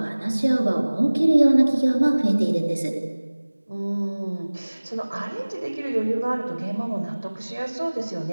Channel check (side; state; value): both; inverted; correlation -1.00